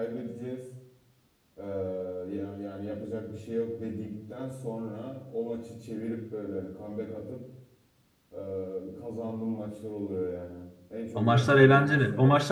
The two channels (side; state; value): both; identical; correlation 1.00